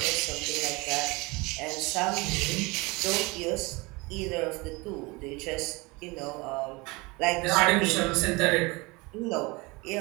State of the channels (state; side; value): quieter; left; 25.2 dB